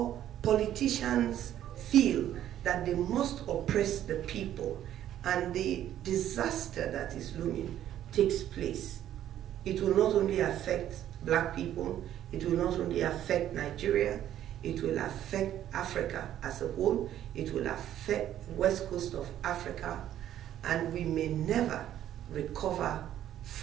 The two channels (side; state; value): left; quieter; 11.6 dB